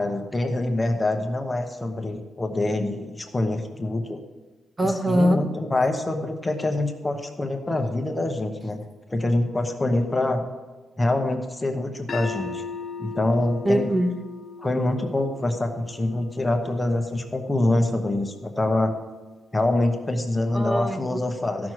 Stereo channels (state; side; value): normal; both; correlation 0.92